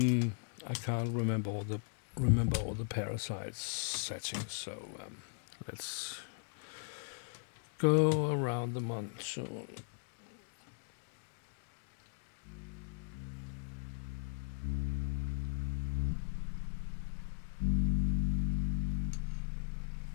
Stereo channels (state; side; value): silent; right; digital silence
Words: can't remember all the parasites settings, so let's go around the monsoon.